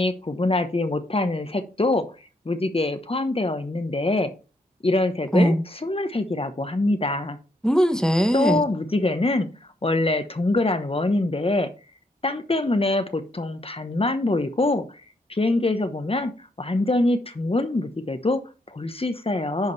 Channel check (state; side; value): normal; both; correlation 0.75